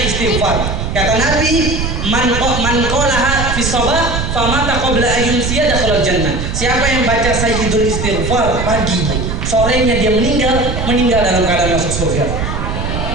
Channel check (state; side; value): noise; right; rumble, 3 dB below the sound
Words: istighfar. Kata Nabi, man qalaha fi shabah famata qabla ayyumsiya dakhala jannah. Siapa yang baca sayyidul istighfar pagi, sorenya dia meninggal dalam keadaan masuk surga.